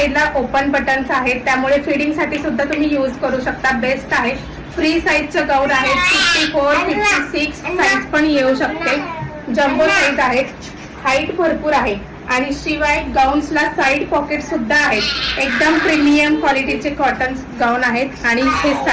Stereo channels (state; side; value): identical; both; correlation 1.00